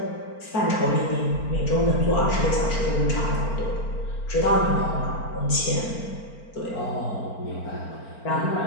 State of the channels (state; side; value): late; right; 4.4 ms